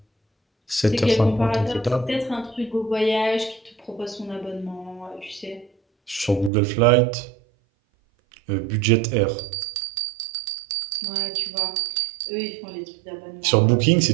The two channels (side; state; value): left; drops out; at 6.5 s